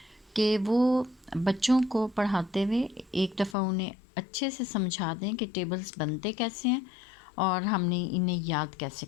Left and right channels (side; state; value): right; drops out; at 3.6 s